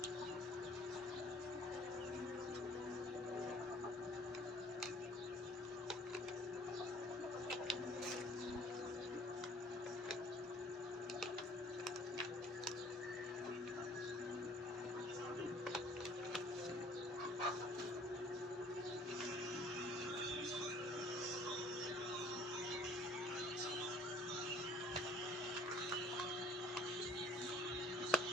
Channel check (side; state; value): both; normal; correlation 0.54